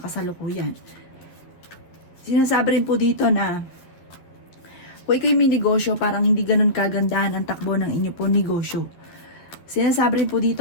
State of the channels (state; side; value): late; right; 11 ms